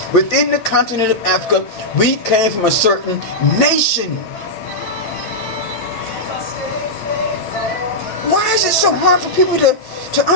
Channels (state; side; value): late; right; 9.0 ms